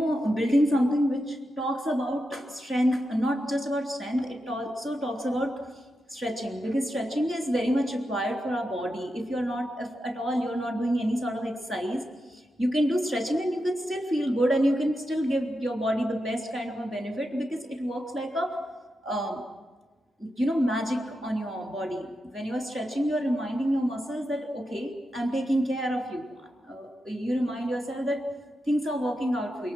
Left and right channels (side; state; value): both; normal; correlation 0.88